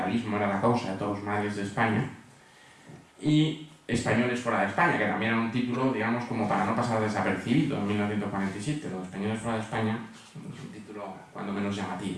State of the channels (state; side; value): identical; both; correlation 1.00